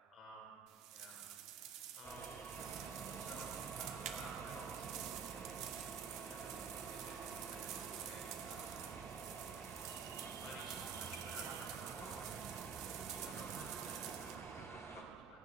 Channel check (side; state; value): left; quieter; 6.3 dB